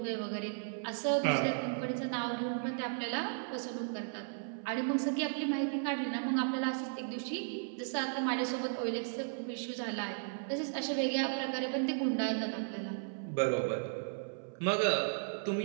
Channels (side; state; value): left; silent; 54 dB below the other